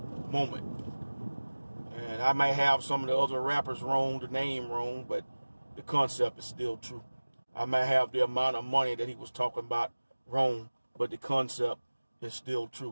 moment. And I may have some of the other rappers wrong, the name wrong, but the concept is still true. I may have the amount of money that he was talking about wrong, but the concept is still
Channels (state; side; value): inverted; both; correlation -1.00